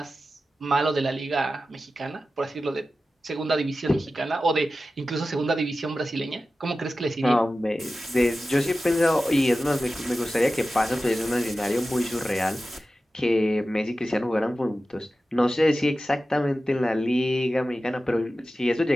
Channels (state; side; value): normal; both; correlation 0.94